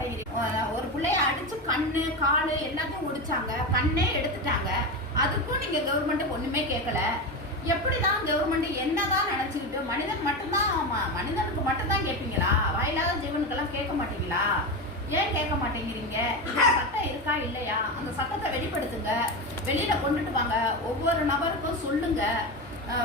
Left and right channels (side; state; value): both; normal; correlation 0.19